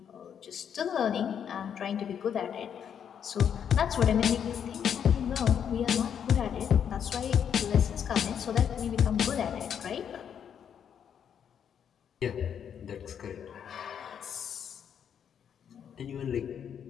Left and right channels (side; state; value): right; quieter; 8.3 dB